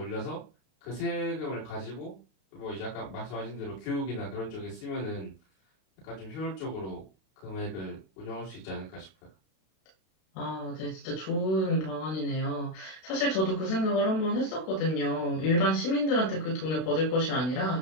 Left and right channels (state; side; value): late; right; 32 ms